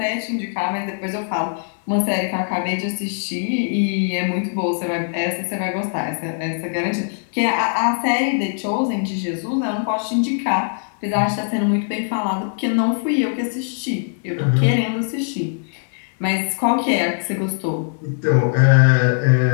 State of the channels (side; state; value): right; silent; digital silence